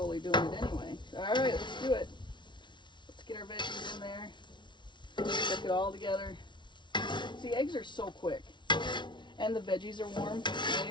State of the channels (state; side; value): late; right; 0.23 ms